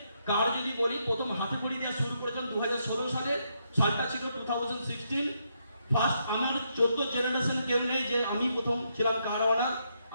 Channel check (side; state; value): both; inverted; correlation -0.78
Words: কার যদি বলি, প্রথম হাতে খড়ি দেওয়া শুরু করেছিলাম 2016 সালে, সালটা ছিল 2016। ফার্স্ট আমার 14 জেনারেশন কেউ নেই যে আমি প্রথম ছিলাম কার ওনার।